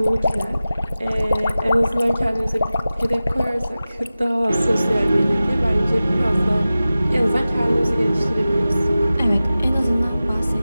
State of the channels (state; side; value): inverted; both; correlation -0.96